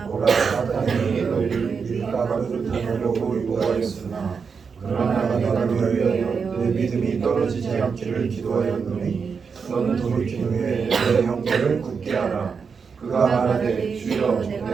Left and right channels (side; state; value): left; quieter; 5.7 dB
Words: 보라 사단이 너희를 밀가루를 담으려고 유혹하였으나 그러나 내가 너를 위하여 내 믿음이 떨어지지 않기를 기도하였노니 너는 돌이킨 후에 내 형제를 굳게 하라. 그가 말하되 주여